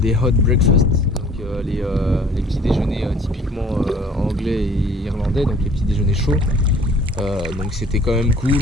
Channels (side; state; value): both; normal; correlation 0.52